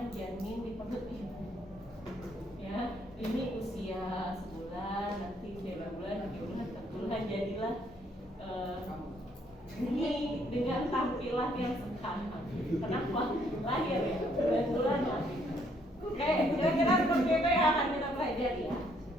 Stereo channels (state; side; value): normal; both; correlation 0.68